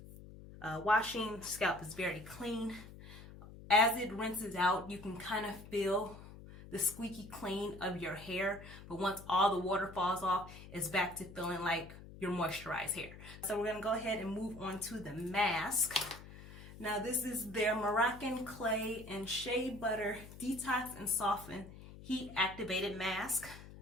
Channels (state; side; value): noise; left; hum, 16 dB below the sound